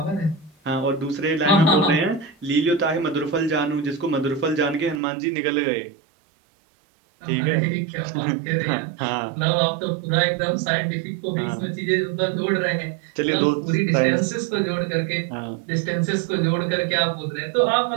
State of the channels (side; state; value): left; drops out; at 5.0 s